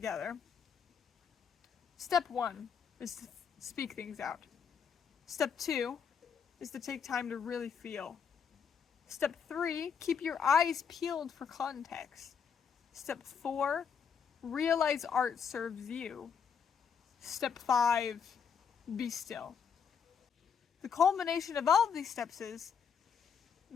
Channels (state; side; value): quieter; right; 6.9 dB